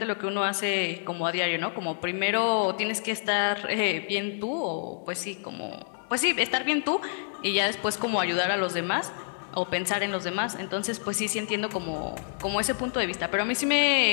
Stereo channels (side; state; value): right; silent; 59 dB below the other